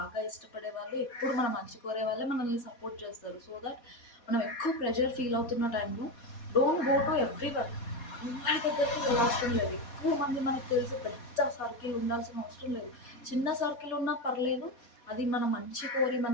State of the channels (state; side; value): late; right; 4.2 ms